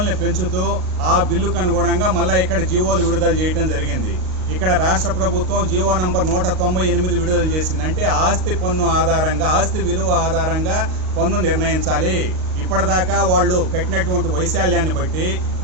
పెంచుతూ ఆ బిల్లుకు అనుగుణంగా మళ్ళీ ఇక్కడ జీవోలు విడుదల చేయడం జరిగింది. ఇక్కడ రాష్ట్ర ప్రభుత్వం జీవో నంబర్ 198 విడుదల చేసింది. అంటే ఆస్తి పన్ను ఆధారంగా, ఆస్తి విలువ ఆధారంగా పన్ను నిర్ణయించాలి. ఇప్పటిదాకా వాళ్ళు కట్టినటువంటి వైశాల్యాన్ని బట్టి,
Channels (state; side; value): late; left; 38 ms